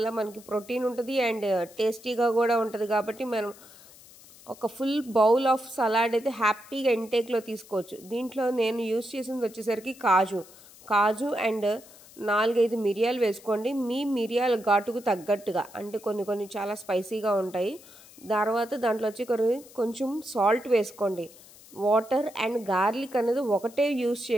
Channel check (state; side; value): noise; left; hiss, 22 dB below the sound